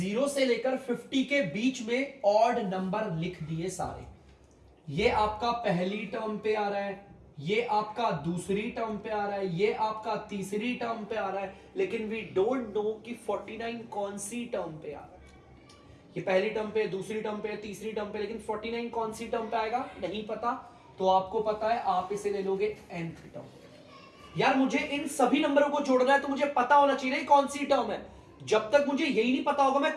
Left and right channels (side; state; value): both; identical; correlation 1.00